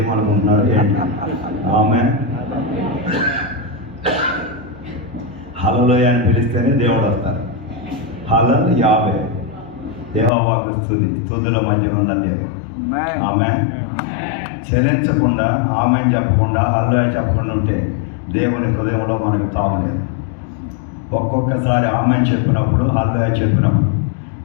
ఏంటి? ఆమె హల్లెలూయా అని పిలిస్తేనే దేవుడు వస్తారు. హల్లెలూయా యావే యెహోవాకు స్తుతి, స్తుతుల మధ్య ఉన్న దేవుడు. ఆమె చలించకుండా, ఆమె చెప్పకుండా, హల్లెలూయా చెప్పకుండా ఉంటే దేవుని హృదయంలో మనకు తావలేదు. ఒక్కొక్కసారి ఆమె చెప్పినప్పుడు, హల్లెలూయా చెప్పినప్పుడు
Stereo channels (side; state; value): right; drops out; at 10.3 s